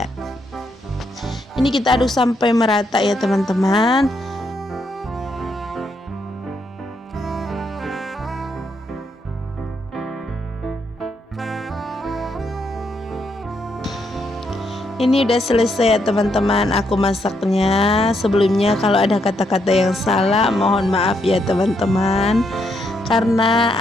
Ini kita aduk sampai merata ya teman-teman. Ini udah selesai ya teman-teman, aku masaknya. Sebelumnya kalau ada kata-kata yang salah mohon maaf ya teman-teman, karena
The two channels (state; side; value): normal; both; correlation 0.77